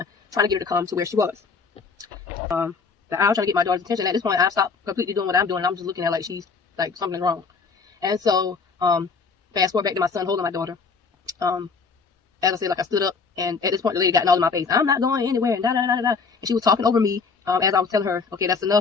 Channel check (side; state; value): right; quieter; 5.0 dB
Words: trying to get her to come to where she was. I was trying to get my daughter's attention. At this point, I stopped completely doing what I'm doing. I'm just looking at her like she's like something's wrong. And so fast forward back to my son holding my daughter. As I said, like I stood up, and at this point the lady got all in my face. I'm not going anywhere, and da da da da da. And she was talking over me as I was telling her, okay, that's